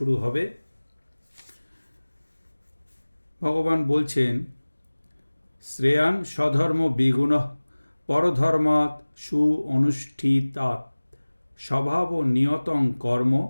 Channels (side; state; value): both; inverted; correlation -1.00